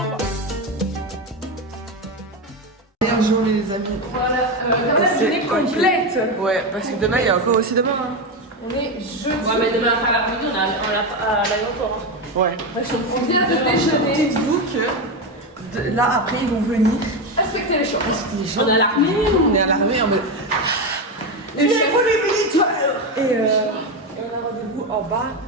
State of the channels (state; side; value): normal; both; correlation 0.13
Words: Journée les amis. Voilà, la journée complète. Ouais, parce que demain il y a encore aussi demain. Hein. On est jeudi. Ouais, mais demain après l'après-midi, on est à l'aéroport. Ouais. On vient de déjeuner. Dites-vous que là après ils vont venir. Respectez les choses. On est à l'armée. On est à l'armée en mode. Et Les pour les militaires. Et on a rendez-vous en bas